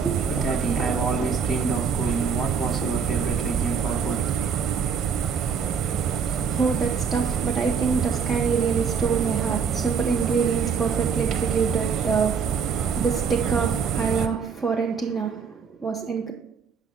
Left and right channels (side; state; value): left; quieter; 6.2 dB